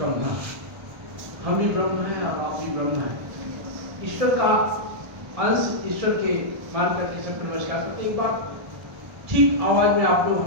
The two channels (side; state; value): left; late; 1.2 ms